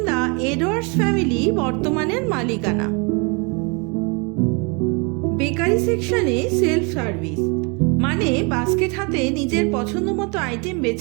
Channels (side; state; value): left; quieter; 32.0 dB